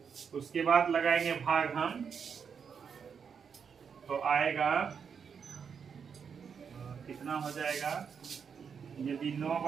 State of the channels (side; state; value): left; quieter; 6.6 dB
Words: उसके बाद लगाएंगे भाग हम, तो आएगा कितना हो जाएगा, यदि 9